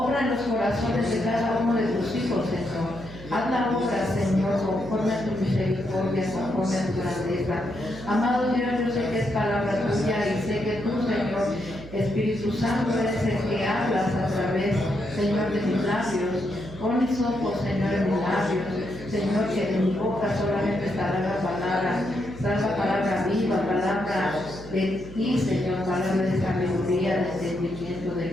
en los corazones de cada uno de tus hijos, Señor. Haz la obra, Señor, conforme a tu misericordia, conforme a tu grandeza. Amado Dios, yo sé que es palabra tuya y sé que tú, Señor, Espíritu Santo, eres el que hablas a través, Señor, de mis labios. Pon mis ojos, Señor, en mis labios. Señor, que de mi boca solamente estará la palabra viva, palabra de ti, Señor, palabra de sabiduría, de entendimiento, de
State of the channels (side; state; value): right; noise; hum, 15 dB below the sound